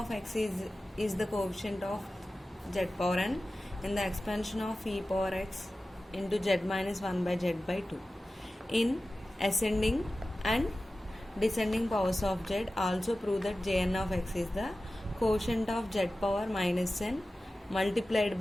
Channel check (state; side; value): normal; both; correlation 0.95